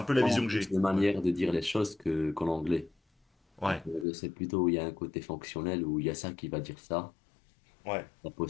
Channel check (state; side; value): drops out; right; at 4.0 s